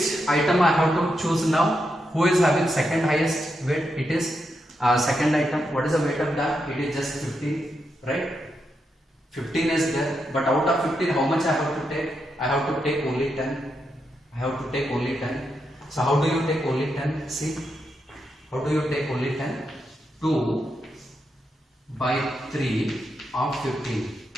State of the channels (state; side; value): normal; both; correlation 0.84